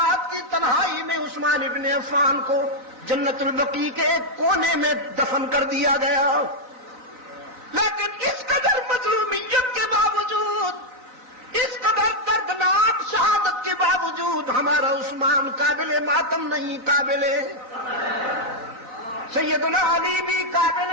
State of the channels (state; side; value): late; left; 3.9 ms